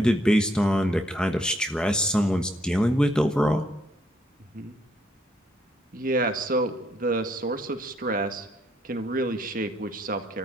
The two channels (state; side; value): normal; both; correlation 0.71